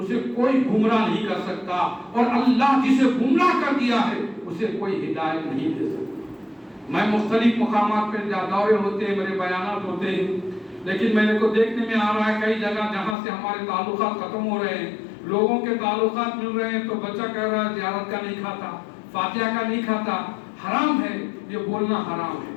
اسے کوئی گمراہ نہیں کر سکتا اور اللہ جسے گمراہ کر دیا ہے اسے کوئی ہدایت نہیں دے سکتا۔ میں مختلف مقامات پہ دورے ہوتے ہیں، میرے بیانات ہوتے ہیں، لیکن میرے کو دیکھنے میں آ رہا ہے کئی جگہ جہاں سے ہمارے تعلقات ختم ہو رہے ہیں، لوگوں کے تعلقات مل رہے ہیں تو بچہ کہہ رہا ہے زیارت کا نہیں کھاتا، فاتحہ کا نہیں کھاتا۔ حرام ہے، یہ بولنا حرام ہے،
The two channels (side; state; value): right; drops out; at 13.2 s